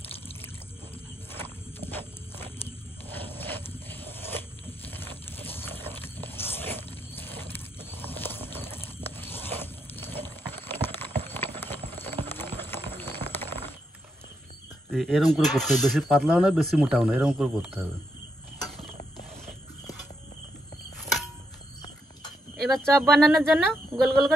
এরকম করে করতে হবে, বেশি পাতলাও না বেশি মোটাও না, এরকম করে করতে হবে। এবার চপ বানানোর জন্য গোল গোল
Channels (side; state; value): both; normal; correlation 0.80